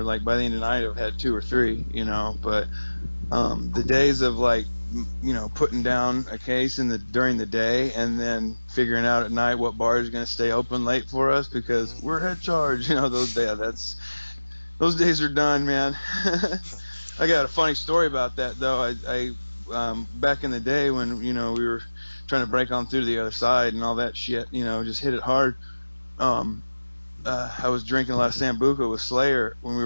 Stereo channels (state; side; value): inverted; both; correlation -1.00